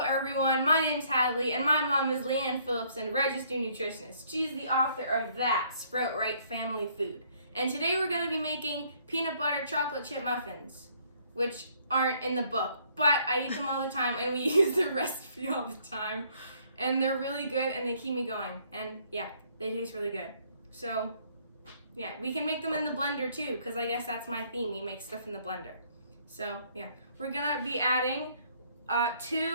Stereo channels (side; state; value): both; inverted; correlation -0.65